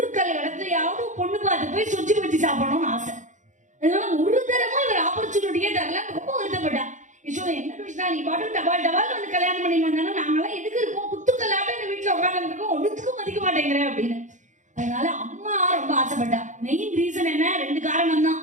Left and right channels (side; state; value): left; late; 0.36 ms